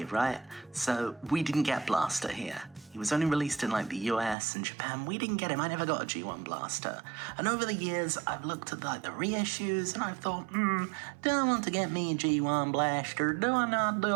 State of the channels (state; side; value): drops out; left; at 4.4 s